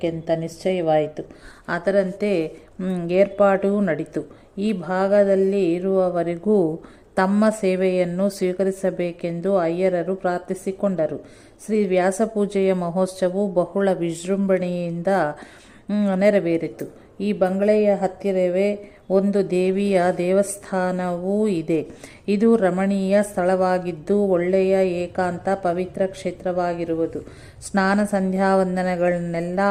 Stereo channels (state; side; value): identical; both; correlation 1.00